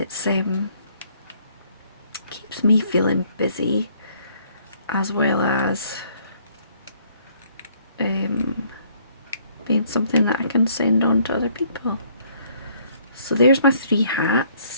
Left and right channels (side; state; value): both; inverted; correlation -0.63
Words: keeps me feeling busy, as well as being something that I can send on to other people. So there's my 3